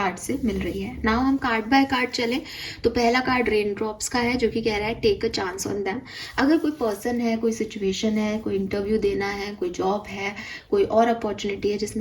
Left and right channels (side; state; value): both; identical; correlation 1.00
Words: से मिल रही है। नाउ हम कार्ड बाय कार्ड चलें तो पहला कार्ड रेन ड्रॉप्स का है जो कि कह रहा है take a chance on them. अगर कोई पर्सन है, कोई सिचुएशन है, कोई इंटरव्यू देना है, कोई जॉब है, कोई और अपॉर्चुनिटी है